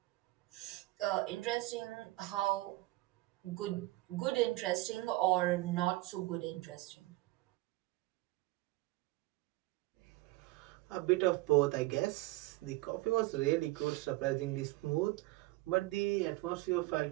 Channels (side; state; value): left; quieter; 20.0 dB